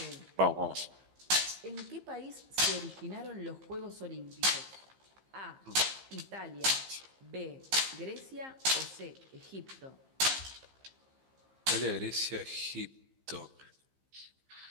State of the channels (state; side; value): late; left; 15 ms